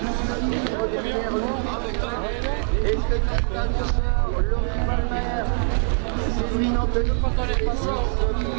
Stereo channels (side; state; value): left; quieter; 38.8 dB